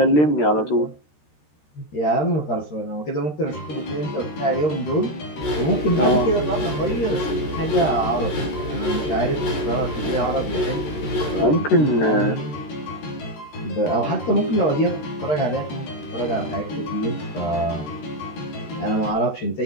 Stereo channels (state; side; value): late; right; 13 ms